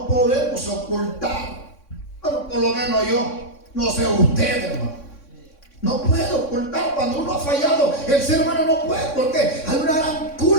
podemos ocultar, bueno, por lo menos yo, no sé usted, hermano, no puede ocultar cuando uno ha fallado. El ser humano no puede, porque hay una gran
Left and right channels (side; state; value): right; late; 3.6 ms